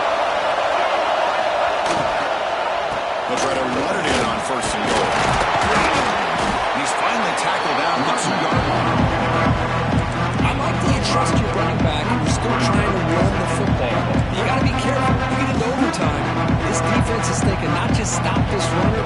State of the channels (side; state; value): both; identical; correlation 1.00